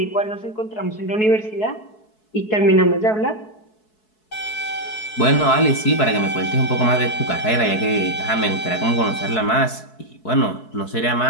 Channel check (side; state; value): right; late; 4.7 ms